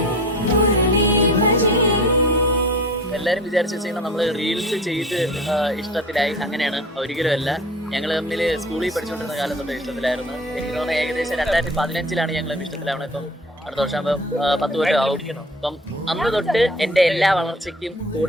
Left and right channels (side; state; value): both; normal; correlation 0.41